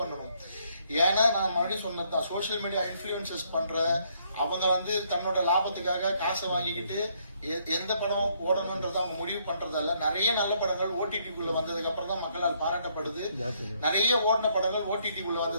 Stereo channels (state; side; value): inverted; both; correlation -0.70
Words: பண்ணணும். ஏன்னா நான் மறுபடியும் சொன்னதுதான், சோசியல் மீடியா இன்ஃபுளுசஸ் பண்ற அவங்க வந்து தன்னோட லாபத்துக்காக காசை வாங்கிக்கிட்டு எந்த படம் ஓடணும்ன்றத அவங்க முடிவு பண்றதால நிறைய நல்ல படங்கள் ஓடிடிக்குள்ள வந்ததுக்கு அப்புறம் தான் மக்களால் பாராட்டப்படுது. நிறைய ஓடின படங்கள் ஓடிடிக்குள்ள